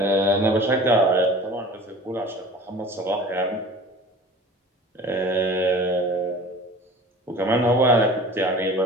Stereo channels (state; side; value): normal; both; correlation 0.41